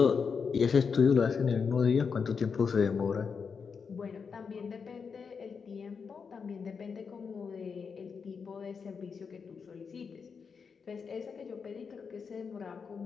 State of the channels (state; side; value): quieter; right; 5.8 dB